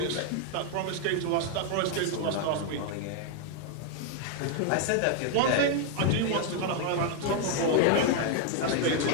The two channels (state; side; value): different; both; correlation 0.00